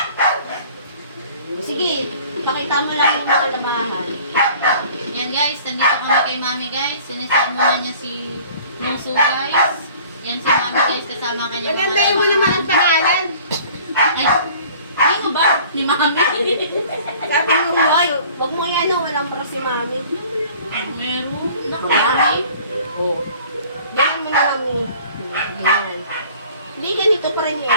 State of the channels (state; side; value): inverted; both; correlation -0.50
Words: Sige, pakita mo lang yung mga lamahan. Yan guys, nandito kami kay Mami guys. Siniset muna niya si Muso guys. Yan si Mami guys, kasama kanya. Nagandahin mo naman ang pangalan. Ay, hindi mo ba? Ni Mami. Sabi mo mo. Ay, wag mo yan, no? Walang para si Mami. Meron. Naku, Mami. Oo. Ganyan mo na lang mo. Ganyan. Hindi, ganito pa rin